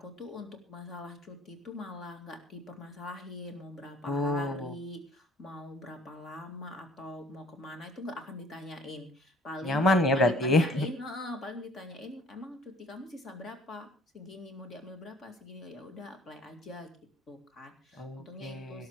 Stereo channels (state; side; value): normal; both; correlation 0.55